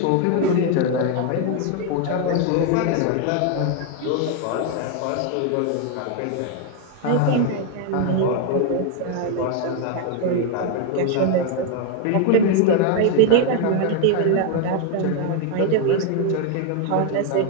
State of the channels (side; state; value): both; different; correlation 0.01